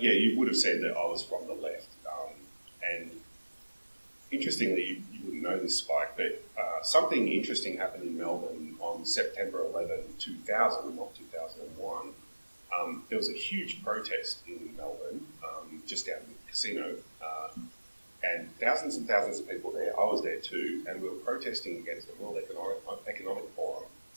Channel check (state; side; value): inverted; both; correlation -1.00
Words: yeah, you would have said that I was from the left, and interestingly, you wouldn't know this, Spike, but something interesting happened in Melbourne on September 11, 2000, not 2001. There was a huge protest in Melbourne, just out in the casino, and thousands and thousands of people there. I was there too, and we were protesting against the World Economic Forum,